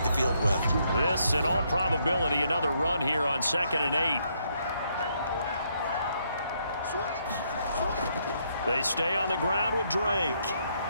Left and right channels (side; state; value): both; inverted; correlation -0.74